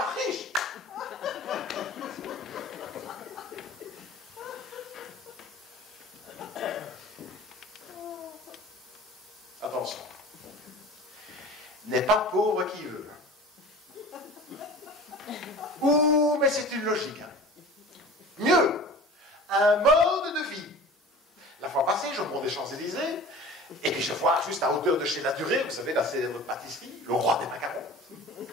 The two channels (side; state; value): both; normal; correlation 0.40